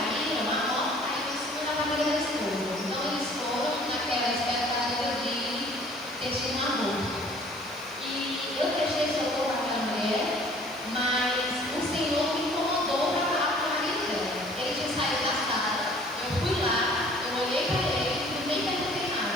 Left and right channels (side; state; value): both; normal; correlation 0.53